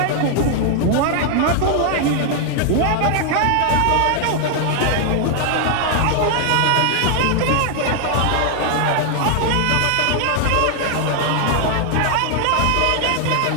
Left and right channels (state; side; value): different; both; correlation 0.00